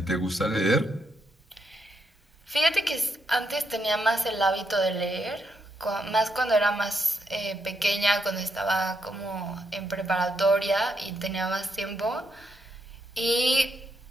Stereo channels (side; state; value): both; normal; correlation 0.80